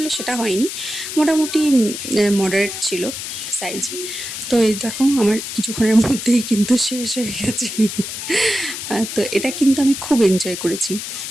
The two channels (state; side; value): noise; left; hiss, 7 dB below the sound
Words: সেটা হয়নি, মোটামুটি মডারেট ছিল সাইজে। তো এই দেখো আমার কিছুক্ষণের মধ্যেই কিন্তু শেষ হয়ে গেছে। তো এটা কিন্তু আমি খুব এনজয় করেছি।